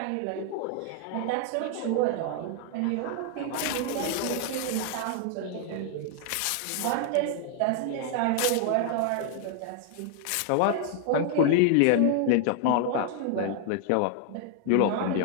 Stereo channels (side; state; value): both; different; correlation 0.00